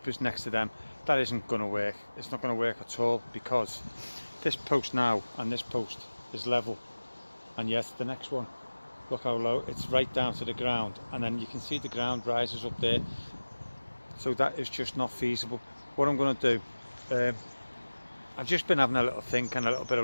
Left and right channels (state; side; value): inverted; both; correlation -1.00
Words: next to them. That isn't going to work. It's not going to work at all, because this post now and this post is level, and yes, the next one, look how low, it's right down to the ground, and then you can see the ground rises up there. So that is just not feasible. What I'm going to do, I've just been having a little think and a little bit